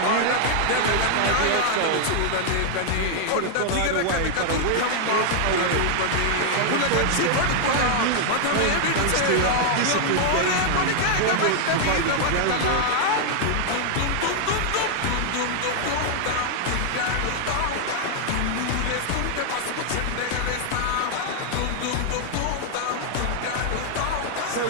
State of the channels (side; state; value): both; different; correlation 0.00